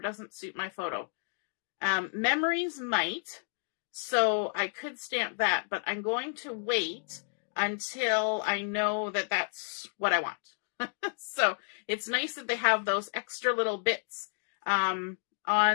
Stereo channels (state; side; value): silent; right; 57 dB below the other